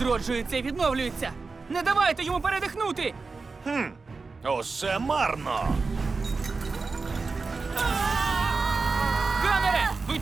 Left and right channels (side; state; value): left; quieter; 4.2 dB